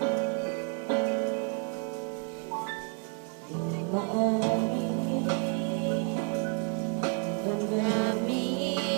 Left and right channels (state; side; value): quieter; left; 38.7 dB